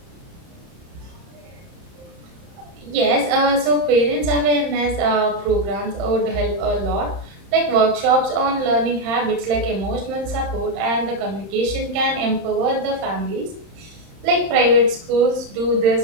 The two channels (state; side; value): late; left; 30 ms